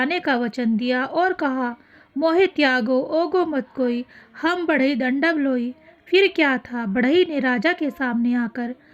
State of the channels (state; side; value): identical; both; correlation 1.00